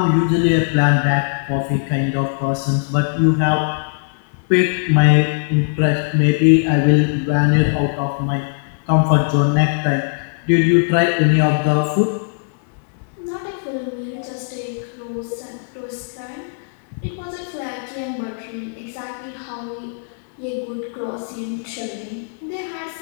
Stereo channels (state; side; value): silent; right; 62 dB below the other